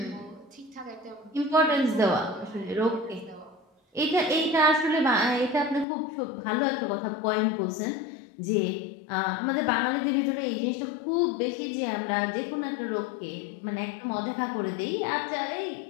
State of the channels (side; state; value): right; drops out; at 5.9 s